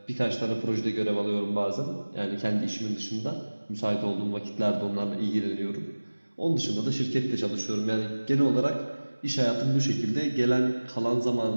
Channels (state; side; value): inverted; both; correlation -1.00